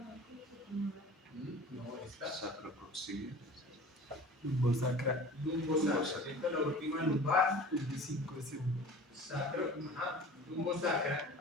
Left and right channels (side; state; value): both; normal; correlation 0.41